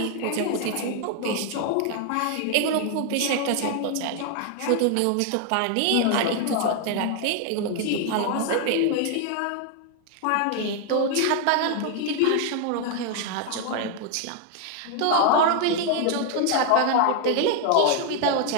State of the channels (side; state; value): both; different; correlation 0.00